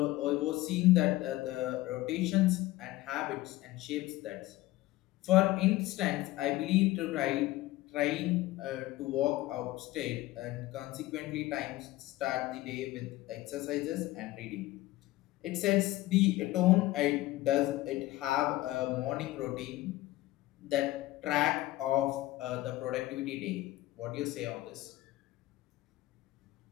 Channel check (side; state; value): right; quieter; 17.5 dB